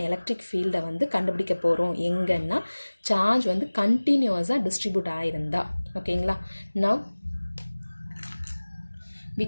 எலக்ட்ரிக் ஃபீல்டை வந்து கண்டுபிடிக்க போகிறோம். எங்கன்னா சார்ஜ் வந்து கண்டினியூஸாக டிஸ்ட்ரிபியூட் ஆகிருந்தா. ஓகேங்களா, now we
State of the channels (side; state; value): both; inverted; correlation -1.00